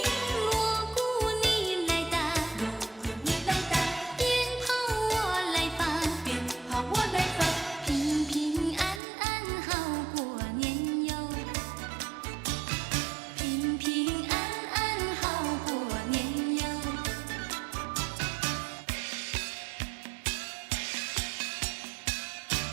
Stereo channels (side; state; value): left; drops out; at 9.0 s